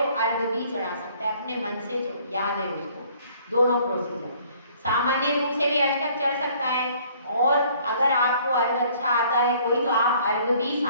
अर्घ भी चढ़ा सकता है अपने मन से, जो याद है उसको। दोनों प्रोसीजर, सामान्य रूप से भी अष्टक चढ़ सकता है, और अगर आपको अर्घ अच्छा आता है कोई, तो आप अर्घ भी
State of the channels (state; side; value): inverted; both; correlation -0.58